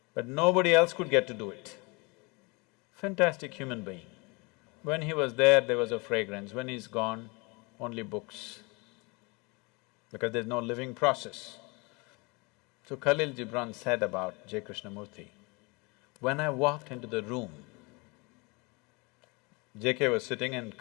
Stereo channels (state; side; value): quieter; right; 28.1 dB